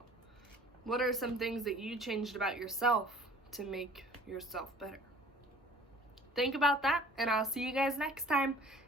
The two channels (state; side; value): normal; both; correlation 0.50